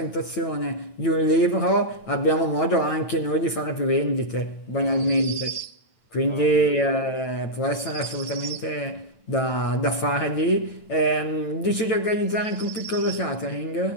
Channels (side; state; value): right; late; 9.0 ms